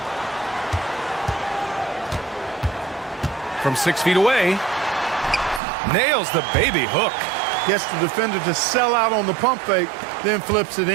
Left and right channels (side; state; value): left; drops out; at 5.6 s